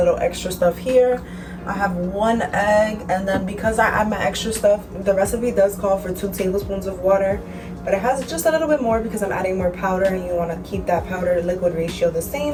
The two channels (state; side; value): identical; both; correlation 1.00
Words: extra stuff here. I have 1 egg, and then because I add my extra stuff, the recipe does call for 2 tablespoons of water, but it has just a little bit more because I'm adding more powder, and you want to keep that powder to liquid ratio the